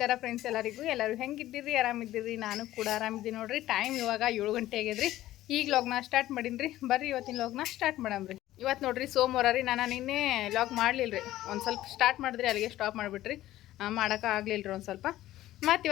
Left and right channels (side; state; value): right; quieter; 14.7 dB